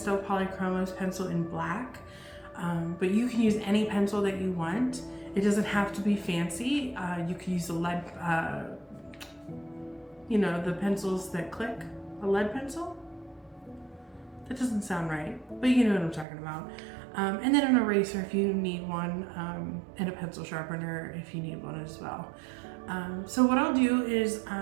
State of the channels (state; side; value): drops out; left; at 16.2 s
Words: Polychromos pencil in black, but you can use any pencil that you want. It doesn't have to be fancy. You can use a lead, the pencils that click, a lead pencil. That doesn't sound right, but you know what I'm talking about. And then an eraser if you need one, and a pencil sharpener if you need one as well. So what I'll do is